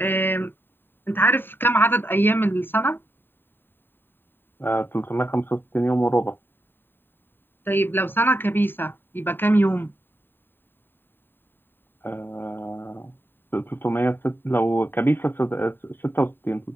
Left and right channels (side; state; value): right; late; 0.097 ms